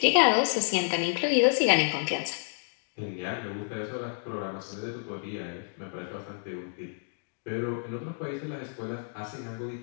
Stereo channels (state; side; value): silent; right; digital silence